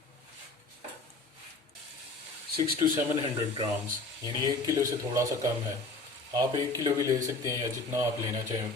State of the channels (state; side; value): quieter; right; 3.3 dB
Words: 600 to 700 ग्राम्स, यानी 1 किलो से थोड़ा सा कम है। आप 1 किलो भी ले सकते हैं या जितना आप लेना चाहें